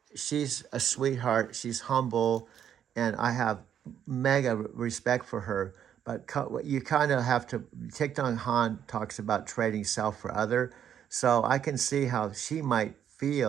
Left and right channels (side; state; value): left; quieter; 9.3 dB